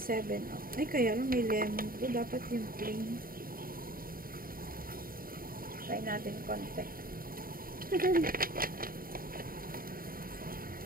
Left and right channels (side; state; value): left; late; 0.42 ms